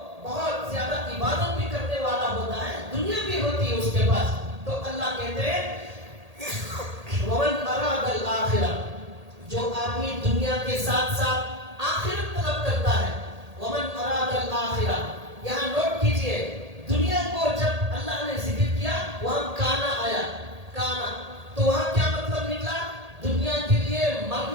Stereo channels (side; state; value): left; late; 1.8 ms